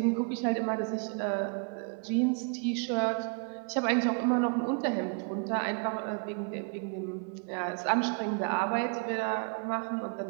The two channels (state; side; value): quieter; left; 37.9 dB